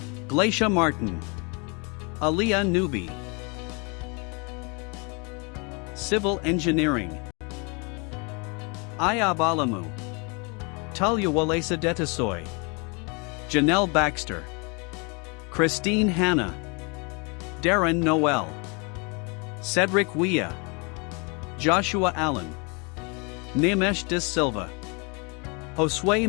Glacia Martin, Aliyah Nubi. Civil Engineering. Ayab Alamu, Talia Walesa Detasoy, Janelle Baxter, Christine Hanna, Darren Noel, Cedric Wea, Joshua Allen, Nimesh De Silva, Josue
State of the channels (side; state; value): right; quieter; 32.0 dB